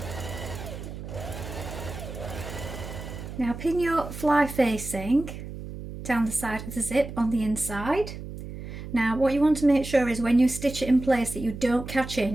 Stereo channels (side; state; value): right; noise; hum, 10 dB below the sound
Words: Now pin your fly facing down the side of the zip on the inside. Now what you want to make sure is when you stitch it in place that you don't catch